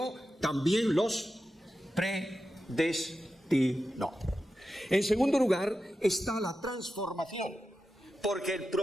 también los predestinó. En segundo lugar, está la transformación, porque el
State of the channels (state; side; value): normal; both; correlation 0.91